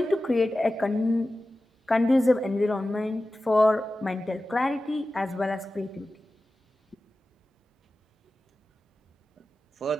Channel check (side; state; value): both; normal; correlation 0.95